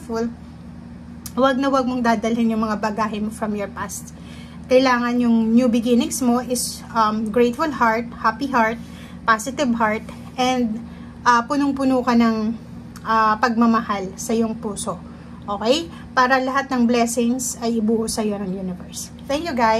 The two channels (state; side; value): identical; both; correlation 1.00